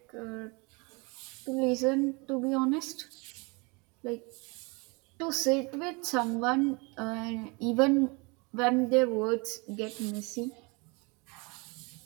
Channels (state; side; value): quieter; left; 29.0 dB